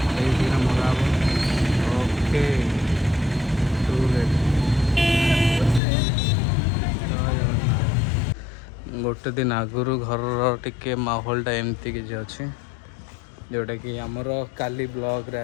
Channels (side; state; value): right; drops out; at 5.8 s